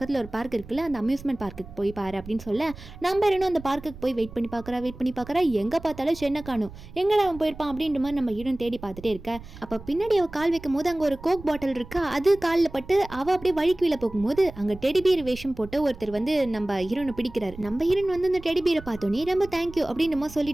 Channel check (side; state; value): right; noise; rumble, 16 dB below the sound